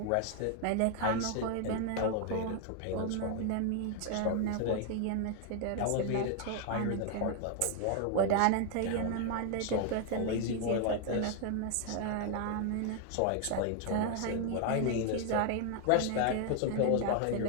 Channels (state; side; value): different; both; correlation 0.00